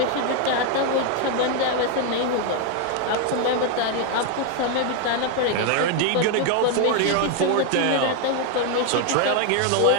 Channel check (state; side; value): different; both; correlation 0.01